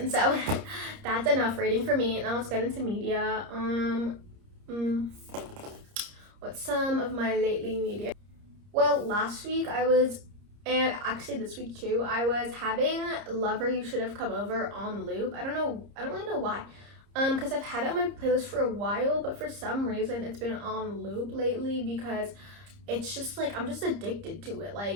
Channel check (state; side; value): late; left; 30 ms